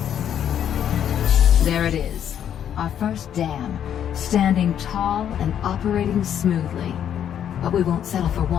There it is. Our first dam, standing tall and operating smoothly. But we won't settle for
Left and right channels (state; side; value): quieter; right; 9.5 dB